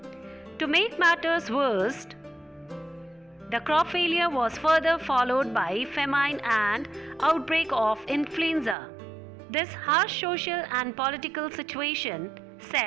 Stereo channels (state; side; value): drops out; left; at 8.8 s